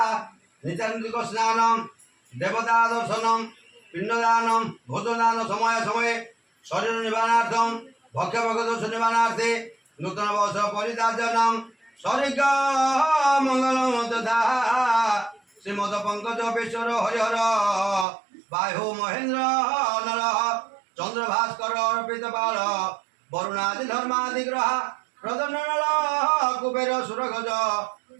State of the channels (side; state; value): left; drops out; at 18.1 s